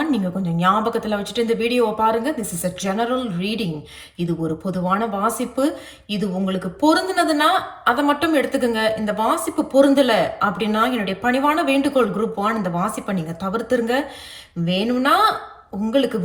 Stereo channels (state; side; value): identical; both; correlation 1.00